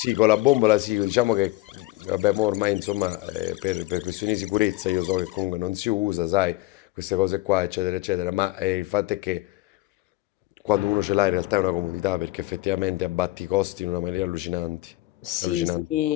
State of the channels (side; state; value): right; quieter; 18.9 dB